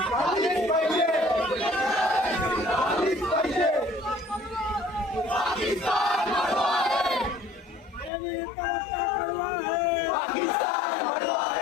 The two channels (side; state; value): right; drops out; at 8.1 s